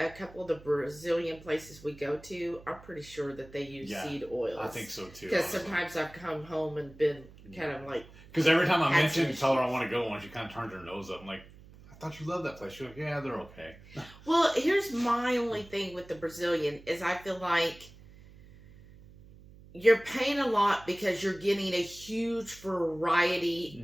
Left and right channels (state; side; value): noise; right; hum, 21 dB below the sound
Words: couple of the Brazilian places we go to, I'm pretty sure that they use seed oils. I think so too. Because sometimes I've come home and been kind of like. Because every time I mention and tell her I want to go one, she kind of turns her nose up. I'm like, I thought you loved that place. She's like, yeah, they're okay. Well, here's my only thing with the Brazilian is I feel like you're paying a lot because you're getting a huge